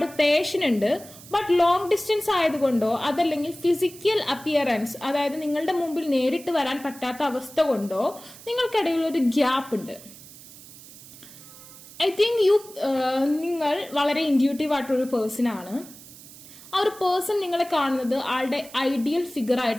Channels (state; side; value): noise; right; hiss, 18 dB below the sound